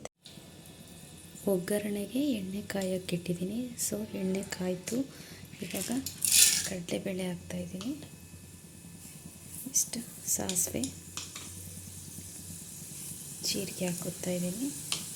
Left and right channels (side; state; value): both; identical; correlation 1.00